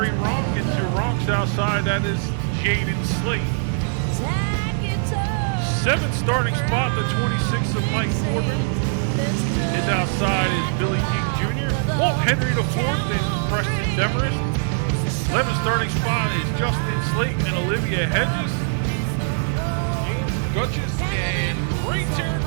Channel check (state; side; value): silent; left; digital silence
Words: Ronk. And to Ronk's outside, that is Jaden Slate. Seventh starting spot, the 26 of Mike Corbin. His outside is Billy King Jr. Walt Henry the fourth and Preston Demarest. 11th starting spot is Justin Slate and Olivia Hedges. James Gutches and Ray